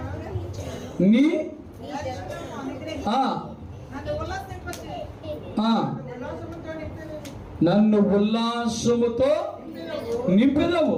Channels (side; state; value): both; identical; correlation 1.00